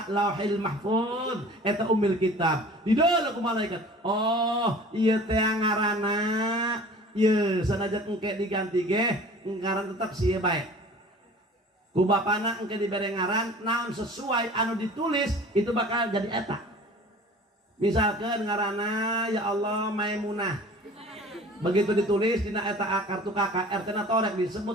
lauhil mahfuz eta ummil kitab dideuleu ku malaikat oh ieu teh ngaranna ieu sanajan engke diganti ge ngaran tetep sieu bae ku bapana engke dibere ngaran naon sesuai anu ditulis itu bakal jadi eta misalkan ngaranna ya Allah Maimunah begitu ditulis dina eta kartu kakak RT na torek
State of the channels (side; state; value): both; normal; correlation 0.44